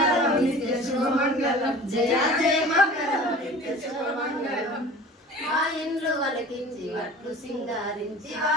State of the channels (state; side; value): normal; both; correlation 0.41